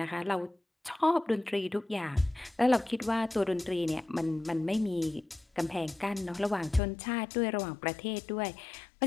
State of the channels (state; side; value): drops out; right; at 6.8 s